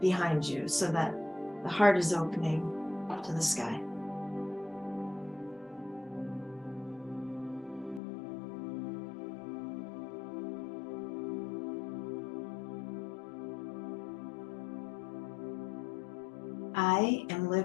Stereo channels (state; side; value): drops out; right; at 8.0 s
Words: you so that the heart is opening up to the sky. I am